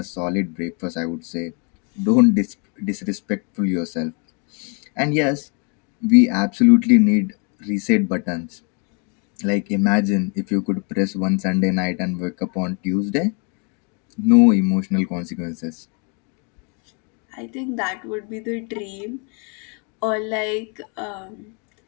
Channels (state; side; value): quieter; right; 36.3 dB